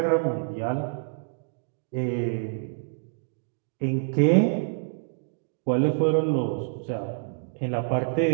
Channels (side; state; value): left; silent; digital silence